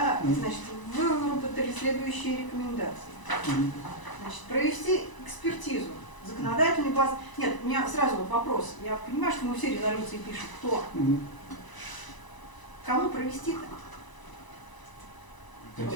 значит, вы выработали следующие рекомендации. Значит, провести экспертизу. Законодательный баз. Нет, у меня сразу вот вопрос. Я понимаю, что мы все резолюции пишем. Кто? Кому провести-то?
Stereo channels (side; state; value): right; late; 1.0 ms